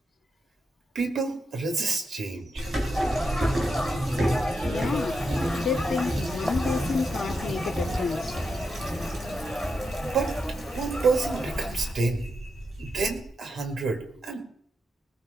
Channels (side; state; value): both; normal; correlation 0.85